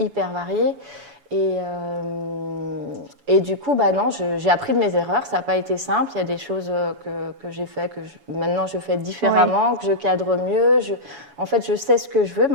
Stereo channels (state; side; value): late; left; 7.1 ms